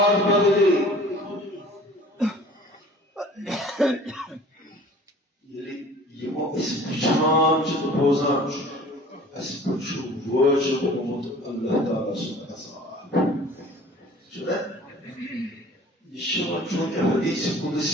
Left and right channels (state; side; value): normal; both; correlation 0.47